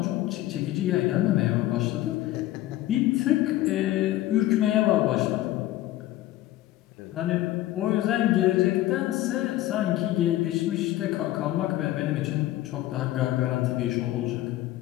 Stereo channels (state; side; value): quieter; right; 15.3 dB